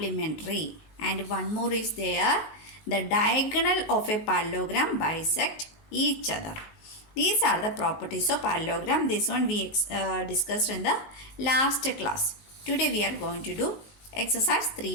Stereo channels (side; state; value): right; late; 19 ms